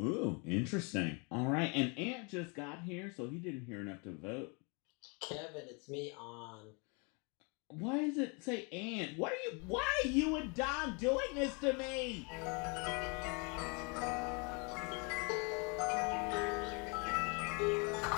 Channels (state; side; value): quieter; right; 32.7 dB